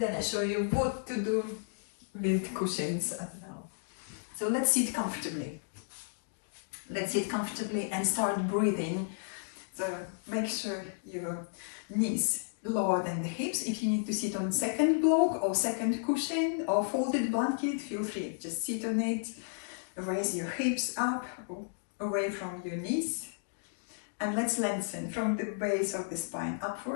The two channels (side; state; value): right; silent; digital silence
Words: I show you what to do with cushions as well. So let's sit comfortably. Let's sit comfortably and start breathing. So make sure your knees lower than the hips. If you need to sit on second block or second cushion or folded blanket, feel free. Just sit on it. Raise your hips up, away from your knees. And let's lengthen from the base of the spine